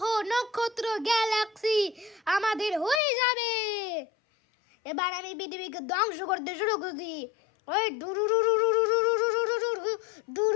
নক্ষত্র গ্যালাক্সি আমাদের হয়ে যাবে। এবার আমি পৃথিবীকে ধ্বংস করতে শুরু করছি। ওই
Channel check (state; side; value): drops out; right; at 3.0 s